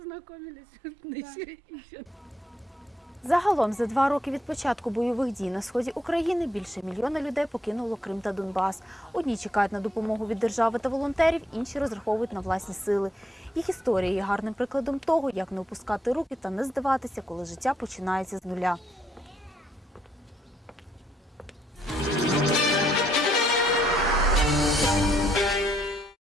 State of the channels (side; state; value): both; normal; correlation 0.73